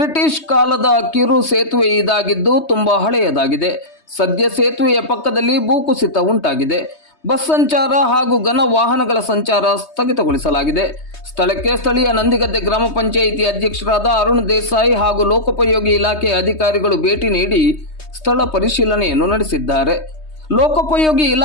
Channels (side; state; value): right; late; 3.2 ms